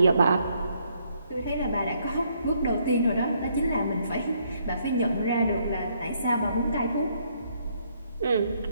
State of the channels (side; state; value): both; inverted; correlation -0.70